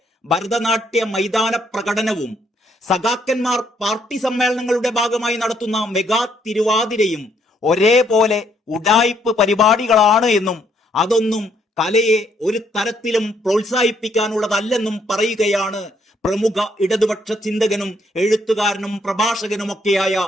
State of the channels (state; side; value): normal; both; correlation 0.71